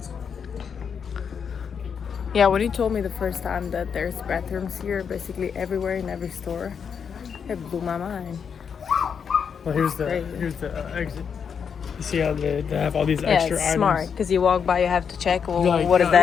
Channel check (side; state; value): right; quieter; 6.9 dB